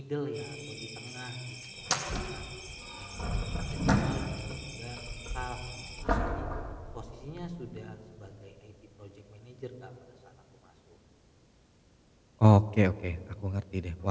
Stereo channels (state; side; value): identical; both; correlation 1.00